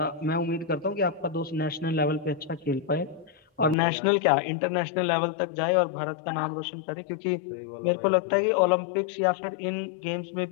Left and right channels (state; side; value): drops out; right; at 3.8 s